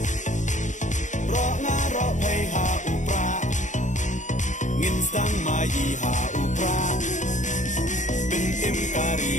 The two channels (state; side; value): late; right; 0.36 ms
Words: ro nga ro phei ha u pra ngin sang mai ha u pra bin im kari